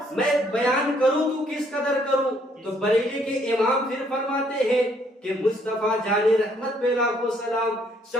میں بیان کروں تو کس قدر کروں. تو بریلی کے امام پھر فرماتے ہیں کہ مصطفیٰ جان رحمت پہ لاکھوں سلام،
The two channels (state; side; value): normal; both; correlation 0.67